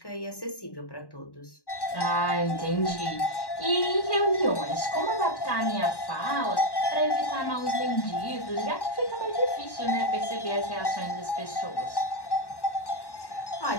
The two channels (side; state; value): right; late; 1.1 ms